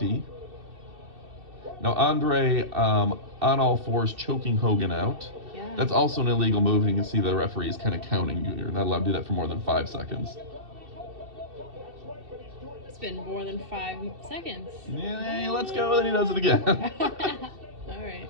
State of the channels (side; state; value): left; late; 2.7 ms